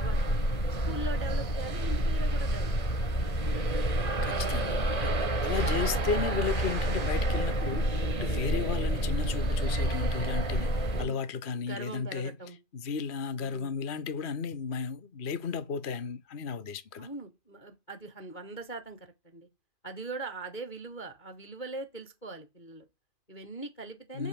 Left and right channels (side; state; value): right; late; 2.4 ms